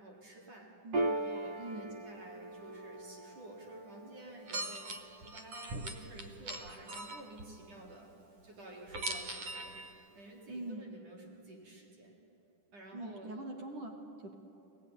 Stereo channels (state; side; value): late; left; 10 ms